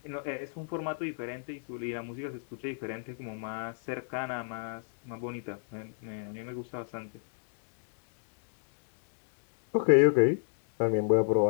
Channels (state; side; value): silent; right; digital silence